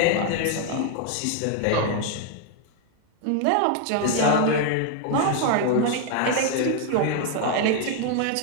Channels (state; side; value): different; both; correlation 0.00